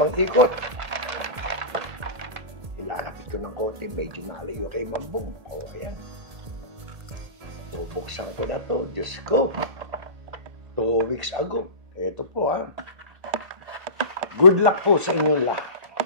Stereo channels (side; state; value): left; late; 1.8 ms